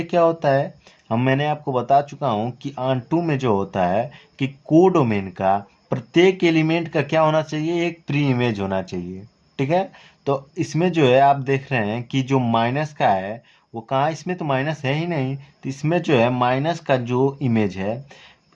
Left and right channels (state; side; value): identical; both; correlation 1.00